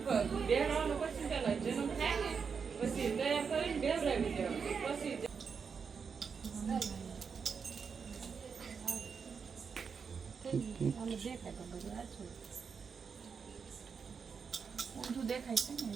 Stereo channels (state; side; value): quieter; left; 6.0 dB